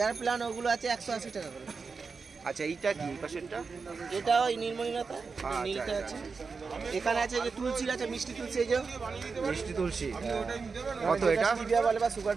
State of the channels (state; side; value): quieter; left; 4.8 dB